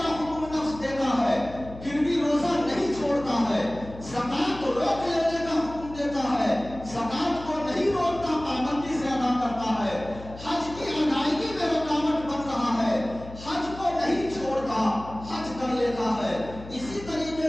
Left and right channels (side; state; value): left; noise; hum, 15 dB below the sound